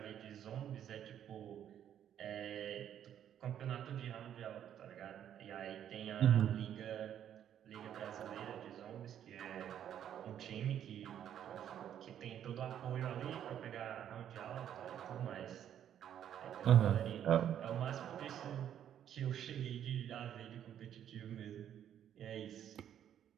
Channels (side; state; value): left; quieter; 10.0 dB